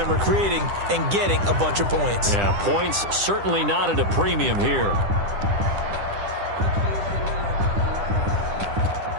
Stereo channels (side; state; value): left; late; 10 ms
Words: are creating and getting a bunch of points. Yeah, points certainly not at a premium here.